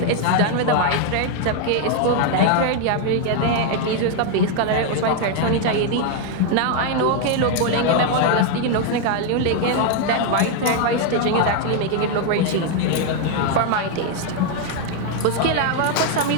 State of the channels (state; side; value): different; both; correlation 0.01